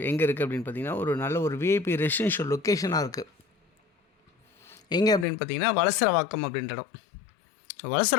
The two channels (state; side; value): drops out; right; at 5.2 s